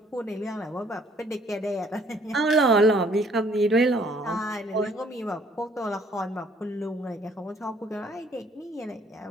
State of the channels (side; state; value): both; normal; correlation 0.61